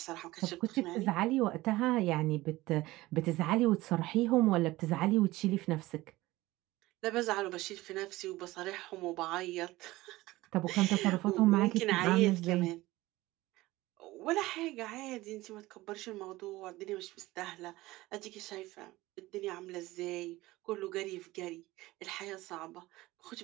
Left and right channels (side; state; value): left; quieter; 18.6 dB